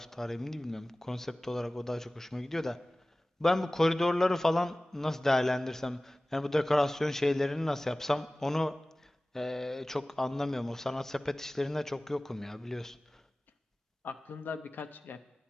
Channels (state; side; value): normal; both; correlation 0.98